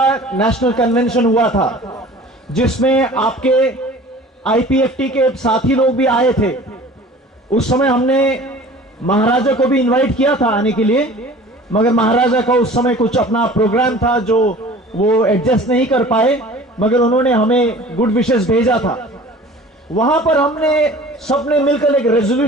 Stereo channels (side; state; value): both; normal; correlation 0.44